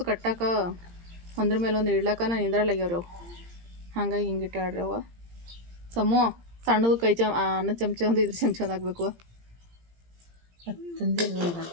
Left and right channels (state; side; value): late; left; 17 ms